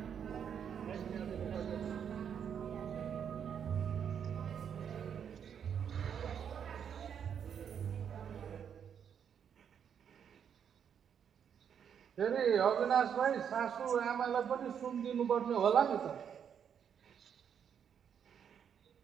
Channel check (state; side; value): quieter; left; 8.0 dB